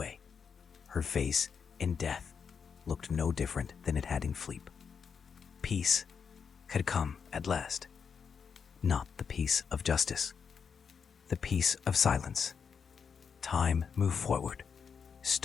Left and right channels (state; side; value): quieter; right; 6.4 dB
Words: Her face, in death, looked no different than it had in sleep. Peace had come at last. Not the peace of justice, the peace of silence. Time moved forward.